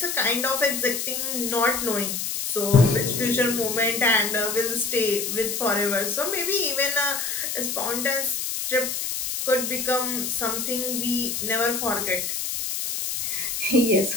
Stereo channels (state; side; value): noise; left; hiss, 2 dB below the sound